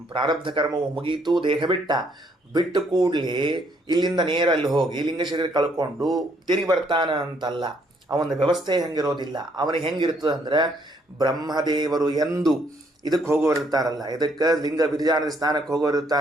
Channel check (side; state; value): both; normal; correlation 0.69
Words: ಪ್ರಾರಬ್ಧ ಕರ್ಮವು ಮುಗೀತು, ದೇಹ ಬಿಟ್ಟು ಕೂಡಲೇ ಇಲ್ಲಿಂದ ನೇರ ಅಲ್ಲಿ ಹೋಗಿ ಲಿಂಗ ಶರೀರ ಕಳ್ಕೊಂಡು ತಿರುಗಿ ಬರ್ತಾನ ಅಂತಲ್ಲ. ಅವನ ವ್ಯವಸ್ಥೆ ಹೆಂಗಿರೋದಿಲ್ಲ. ಅವನಿಗೆ ಹೆಂಗಿರ್ತದೆ ಅಂದ್ರೆ, ಬ್ರಹ್ಮದೇವರು ಎಂದು ಇದಕ್ಕೆ ಹೋಗೋರಿರ್ತಾರಲ್ಲ, ಇದಕ್ಕೆ ಲಿಂಗ ವಿರಜಾನದ ಸ್ನಾನಕ್ಕೆ